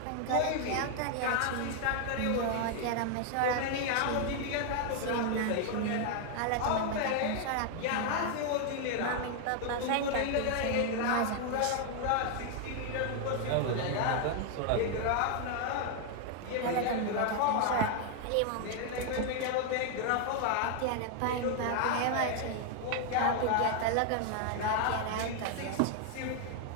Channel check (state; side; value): different; both; correlation 0.00